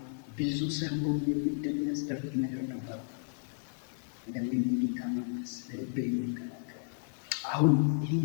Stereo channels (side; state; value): right; silent; 55 dB below the other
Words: ብዙ ሰሞን የሚያስደርግ ነገር ነበር። እንደምን ጌታ መንፈስ በልቤ የሚከላከል አሁን ይህ